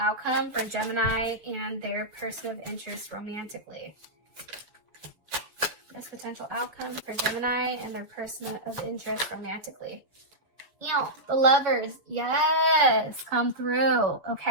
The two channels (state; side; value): late; left; 7.0 ms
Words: for Gemini and their person of interest romantically? Best potential outcome for Gemini and their person of interest romantically. You know, the Lovers, yes, come through.